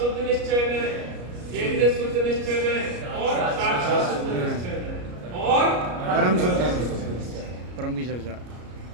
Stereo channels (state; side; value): late; left; 33 ms